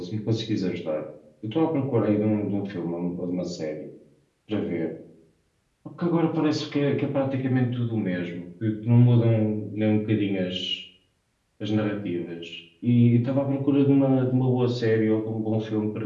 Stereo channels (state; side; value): identical; both; correlation 1.00